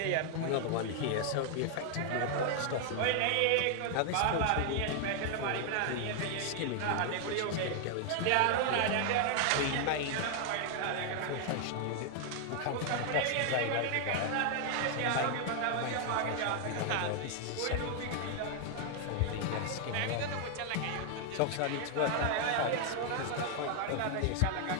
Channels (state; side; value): different; both; correlation 0.00